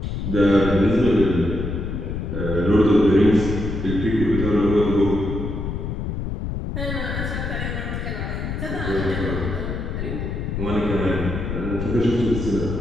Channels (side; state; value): left; noise; rumble, 4 dB below the sound